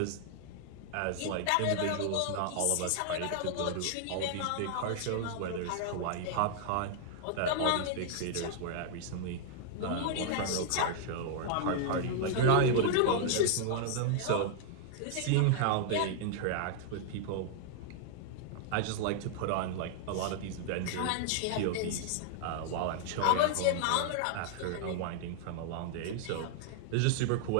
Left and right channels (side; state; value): both; different; correlation -0.01